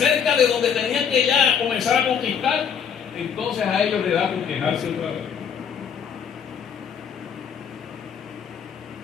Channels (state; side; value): quieter; right; 7.3 dB